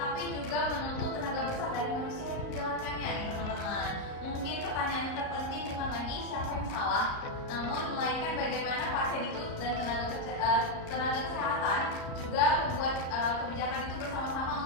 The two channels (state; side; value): late; right; 38 ms